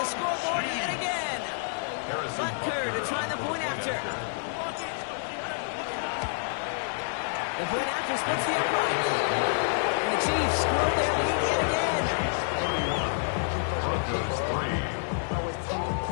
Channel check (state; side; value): silent; right; digital silence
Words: scoreboard yet again. Butker to try the point after. The point after splits the upright. And the Chiefs grow their lead yet again. Broncos 3.